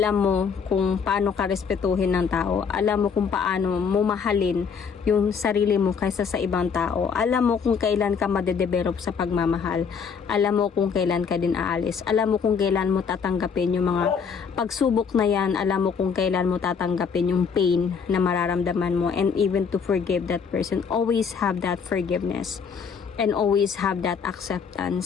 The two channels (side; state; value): right; quieter; 6.2 dB